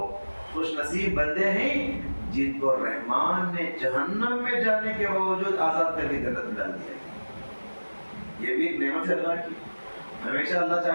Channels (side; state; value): both; inverted; correlation -1.00